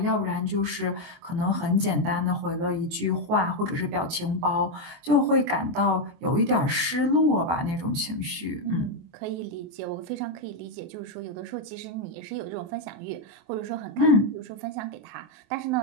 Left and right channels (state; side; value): late; left; 24 ms